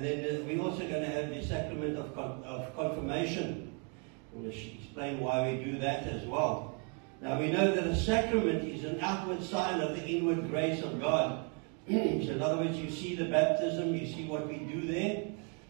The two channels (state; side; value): quieter; left; 37.7 dB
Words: then we're also going to have the sacrament of confirmation. I want to explain why we do that as well. Now we know that a sacrament is an outward sign of the inward grace of God. So in other words, you see the baptism, you see what we do there.